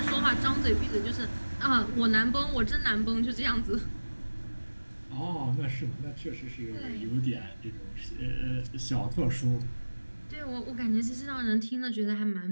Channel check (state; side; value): inverted; both; correlation -1.00